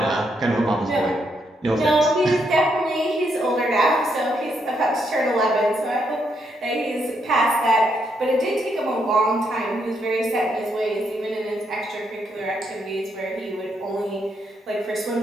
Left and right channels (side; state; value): both; normal; correlation 0.77